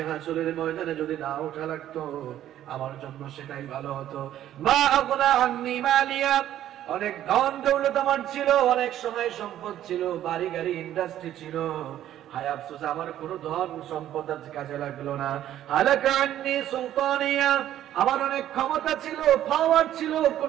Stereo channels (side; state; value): left; quieter; 12.0 dB